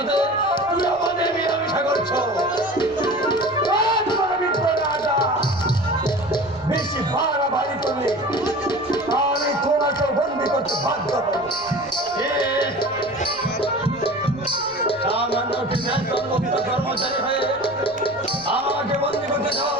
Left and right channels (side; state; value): right; noise; rumble, 26 dB below the sound